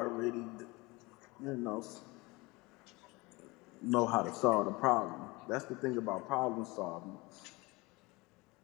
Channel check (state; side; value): quieter; right; 23.8 dB